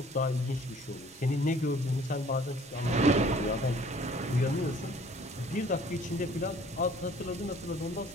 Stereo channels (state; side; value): normal; both; correlation 0.54